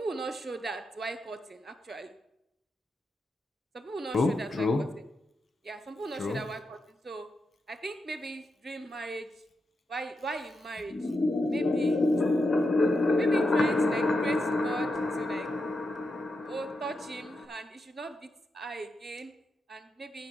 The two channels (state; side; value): normal; both; correlation 0.86